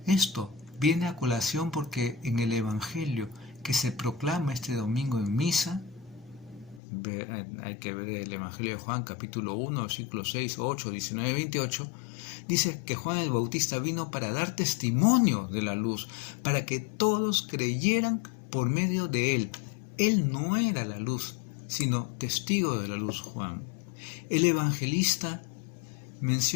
Esto viene a colación porque en el Evangelio que se proclama este domingo en misa, hay que ver el Evangelio de Juan, capítulo 1, versículos 6, 8, 19, 28, dice que Juan el Bautista vino para dar testimonio de la luz, para que todos creyeran por medio de él. Él no era la luz, sino testigo de la luz, Juan. El evangelista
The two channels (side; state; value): right; drops out; at 6.8 s